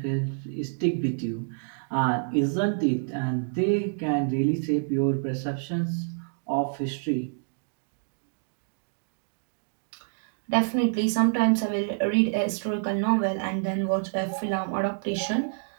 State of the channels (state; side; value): silent; left; digital silence